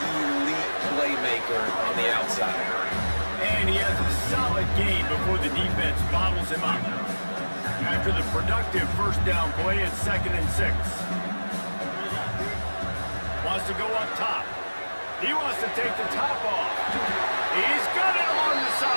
elite playmaker on the outside. And he has a solid game before the defense bottles him up. After the productive 1st down play, it's 2nd and 6. Wants to go up top. He wants to take the top off. He's got it on the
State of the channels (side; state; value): both; inverted; correlation -1.00